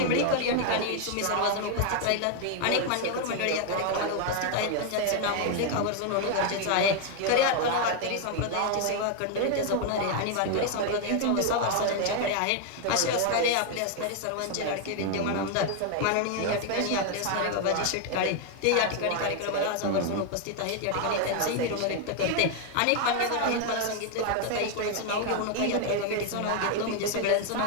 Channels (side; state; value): both; different; correlation 0.00